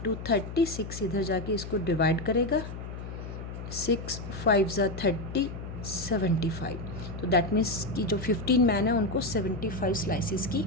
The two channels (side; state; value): left; noise; hum, 9 dB below the sound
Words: 30। 6 इधर जाके इसको डिवाइड करेगा, 6 5 ज़ा 30, 75। तो दैट मीन्स कि जो 15 मैन है उनको 75 स्लाइसिस की